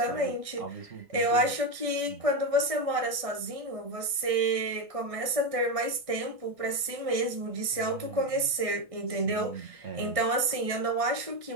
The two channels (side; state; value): left; late; 1.6 ms